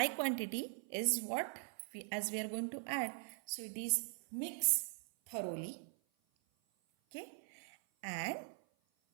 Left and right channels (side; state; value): left; silent; 50 dB below the other